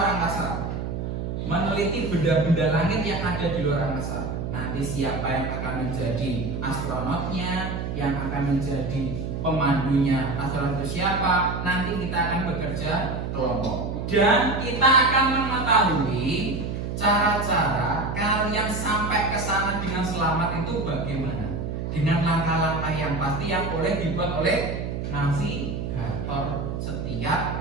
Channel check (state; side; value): noise; right; hum, 4 dB below the sound